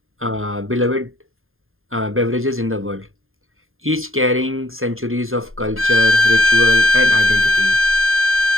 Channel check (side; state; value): left; late; 0.60 ms